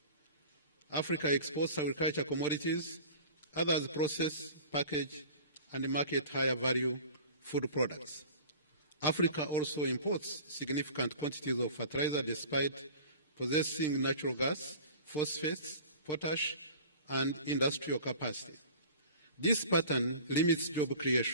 Africa exports agricultural commodities, others process, package, and market higher value food products. Africa also imports significant quantities of fertilizer despite possessing natural gas, phosphates, potash, and industrial capacity. This pattern limits job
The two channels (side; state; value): both; inverted; correlation -0.42